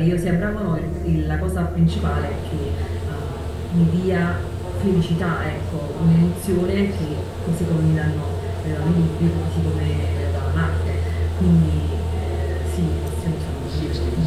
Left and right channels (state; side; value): identical; both; correlation 1.00